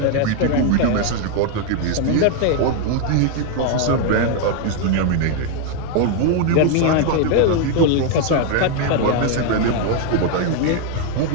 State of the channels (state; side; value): different; both; correlation 0.01